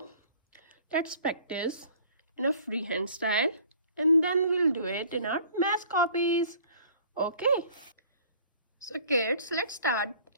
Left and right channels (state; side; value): inverted; both; correlation -0.52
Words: let's practice in a freehand style and then we'll do it in our math copies. Okay. So kids, let's start